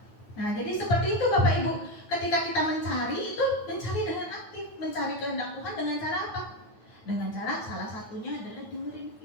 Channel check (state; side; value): late; right; 9.2 ms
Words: Nah, jadi seperti itu Bapak Ibu. Ketika kita mencari dengan aktif, mencari kehendak Tuhan dengan cara apa? Dengan cara salah satunya adalah dengerin